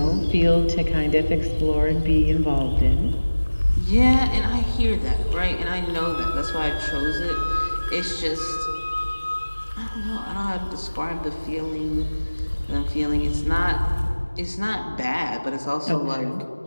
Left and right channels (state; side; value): inverted; both; correlation -1.00